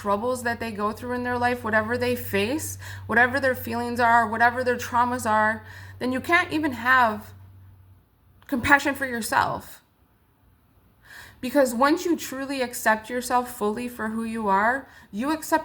that they go through in their life, whatever they face, whatever their feelings are, whatever their traumas are, then you can't even have compassion for yourself. Because once you truly accept yourself fully for who you are, you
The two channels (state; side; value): identical; both; correlation 1.00